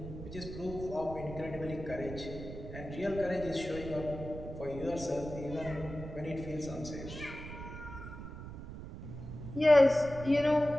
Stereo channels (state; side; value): noise; right; rumble, 10 dB below the sound